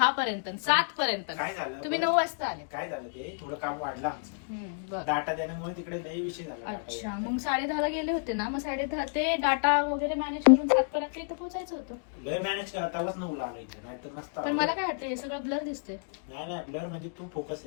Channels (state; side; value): silent; right; digital silence